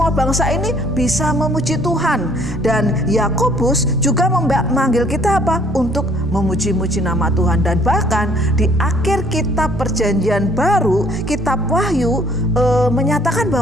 bangsa ini bisa memuji Tuhan. Dan Yakobus juga memanggil kita apa? Untuk memuji-muji nama Tuhan. Dan bahkan di akhir kitab Perjanjian Baru, kitab Wahyu, menyatakan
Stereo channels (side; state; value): both; normal; correlation 0.60